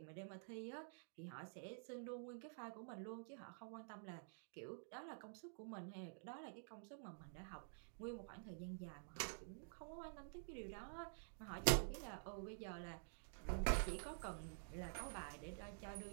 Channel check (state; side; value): silent; left; digital silence